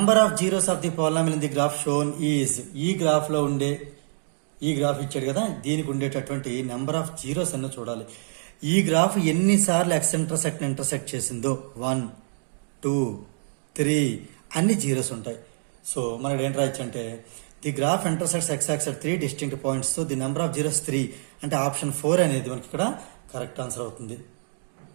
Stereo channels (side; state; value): left; silent; digital silence